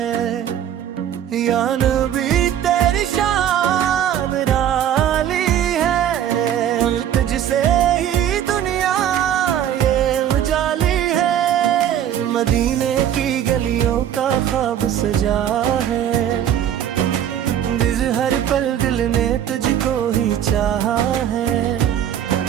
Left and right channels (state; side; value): quieter; left; 10.2 dB